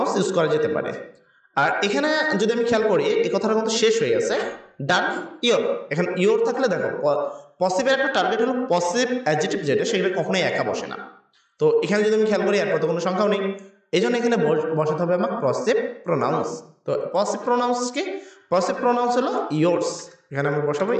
ইউজ করা যেতে পারে। আর এখানে যদি আমি খেয়াল করি, এই কথাটা কিন্তু শেষ হয়ে গেছে, ডান ইওর। এখানে ইওর থাকলে দেখো পসিভের একটা টার্গেট হলো পসিভ অ্যাডজেক্টিভ যেটা, সেগুলো কখনোই একা বসে না। তো এখানে যদি আমি খেয়াল করি, এরপর তো কোনো সংখ্যাও নেই, এই জন্য এখানে বসাতে হবে আমার পসিভ প্রোনাউন্স। তো পসিভ প্রোনাউন্স কি, পসিভ প্রোনাউন্স হলো ইয়োর্স, এখানে আমরা বসাবো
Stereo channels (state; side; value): identical; both; correlation 1.00